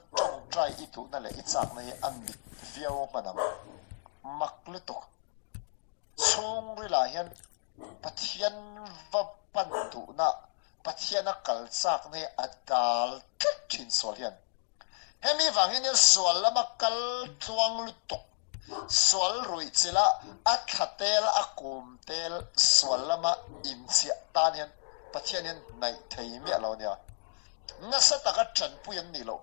chong try i tu na le i chak na hi an dik viau manang mak lu tuk chung ri la hian pathian va pan tu na pathian a kal chak na hi adal tlak thin sual hian hemi wang hian sual lama kal chuang lu tuk sual rui chila a thatel a kum tel sual lama in chia tan hian pathian hian nai thei mi lo nia nga sa taka than puyan ni lo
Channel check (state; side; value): silent; right; digital silence